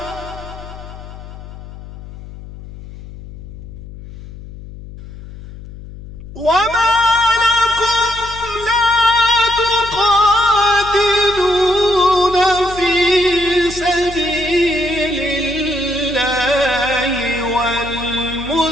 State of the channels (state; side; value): noise; left; hum, 15 dB below the sound